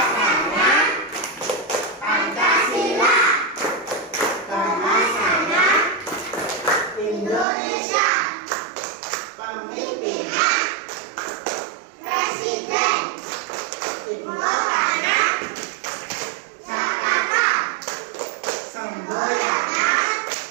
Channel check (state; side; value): drops out; left; at 7.5 s